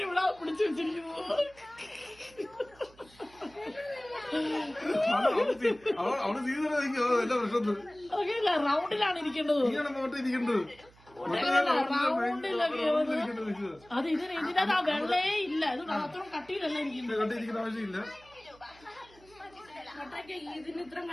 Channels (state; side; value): noise; right; hum, 26 dB below the sound